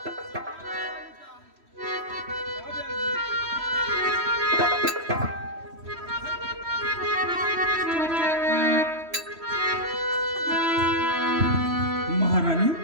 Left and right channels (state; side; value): late; left; 3.1 ms